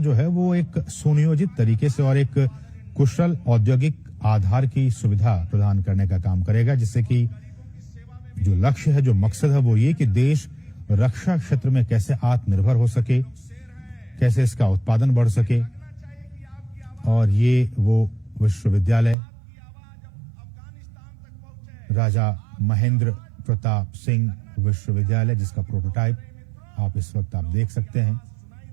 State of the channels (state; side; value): drops out; left; at 19.2 s